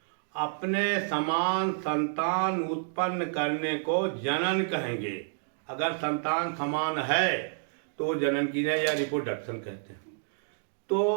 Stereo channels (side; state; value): left; silent; digital silence